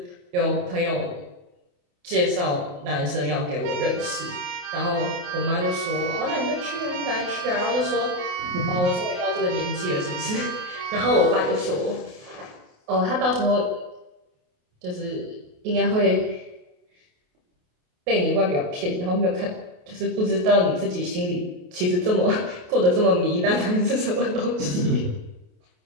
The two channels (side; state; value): left; late; 28 ms